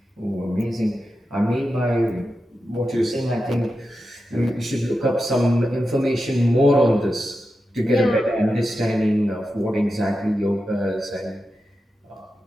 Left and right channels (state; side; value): normal; both; correlation 0.90